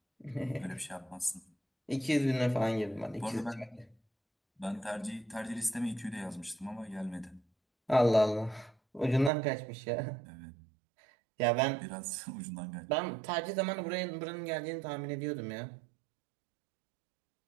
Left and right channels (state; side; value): drops out; left; at 9.3 s